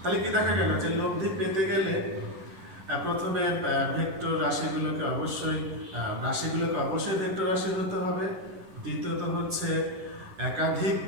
তাহলে কি দেখা গেল যে লব্ধি পেতে গেলে প্রথমে ভেক্টর রাশিগুলোকে অবশ্যই ভেক্টর রাশি হতে হবে। দ্বিতীয়ত হচ্ছে একাধিক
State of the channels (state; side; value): late; left; 11 ms